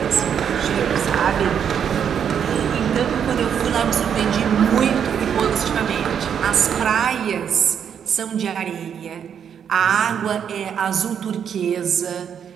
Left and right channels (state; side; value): quieter; left; 8.1 dB